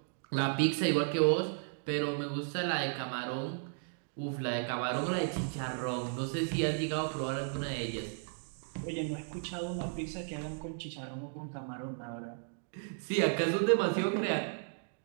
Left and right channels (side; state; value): left; silent; 55 dB below the other